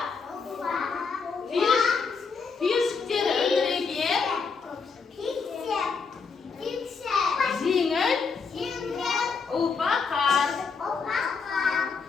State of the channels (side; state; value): right; quieter; 5.2 dB